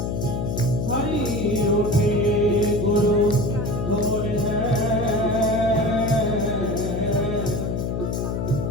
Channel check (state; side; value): noise; left; hum, 1 dB below the sound